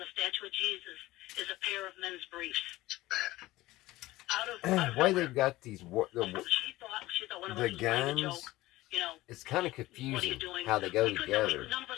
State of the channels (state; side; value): quieter; right; 17.9 dB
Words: statue of Jesus is a pair of men's briefs. Bad. Out of Why nowhere. they've got these She thought one of us the was playing a guns? joke. You know, It's kind of what are you confusing doing? how they go We couldn't- we- together. None of